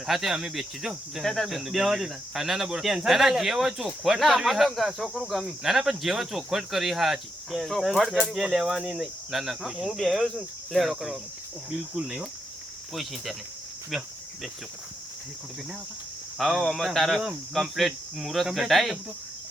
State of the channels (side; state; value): both; normal; correlation 0.82